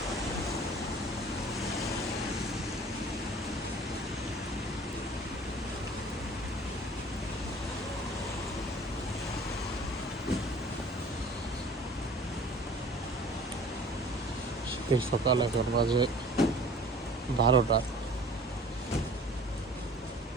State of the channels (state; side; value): normal; both; correlation 0.47